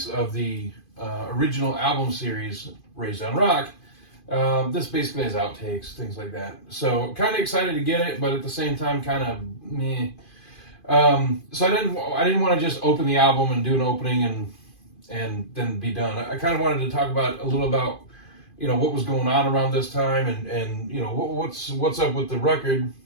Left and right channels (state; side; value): late; right; 2.5 ms